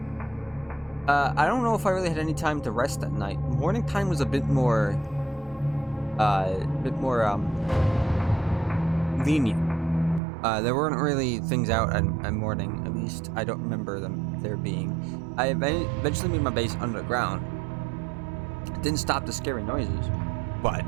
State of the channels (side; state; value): left; drops out; at 10.2 s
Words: I don't know if I really had any time to rest at night. Morning time was a bit more lenient. There weren't really things out at morning. At least I don't remember there being. I eventually made my base underground. It didn't stop the scary noises, but